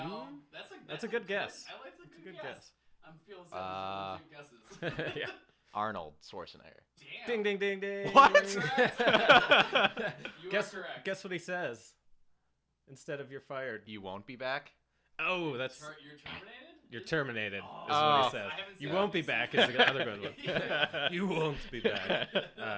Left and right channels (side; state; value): both; identical; correlation 1.00